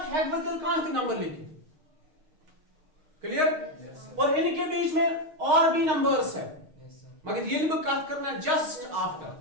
है बदल कहां के नंबर लिखे। क्लियर? और इनके बीच में और भी नंबर्स है, मगर ये भी बात करना जस्ट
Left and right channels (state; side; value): late; left; 6.4 ms